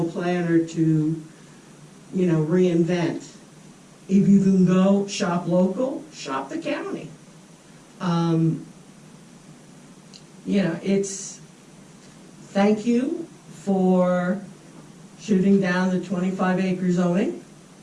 planner to, reinvent. If you can go shop local, shop the county. Thank you for shooting down the 25-acre zoning,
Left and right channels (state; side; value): identical; both; correlation 1.00